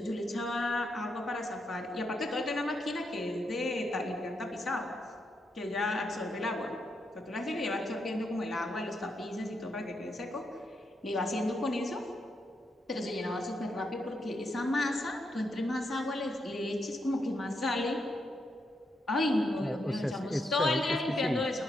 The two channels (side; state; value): both; normal; correlation 0.81